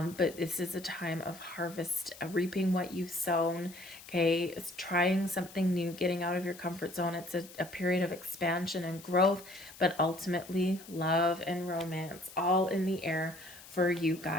this is a time of harvest, reaping what you've sown, okay? It's trying something new, getting out of your comfort zone. It's a period of expansion and growth, but ultimately love and romance all in the air for you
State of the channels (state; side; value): noise; left; hiss, 18 dB below the sound